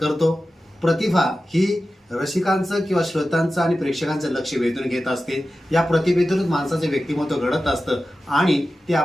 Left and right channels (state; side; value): normal; both; correlation 0.94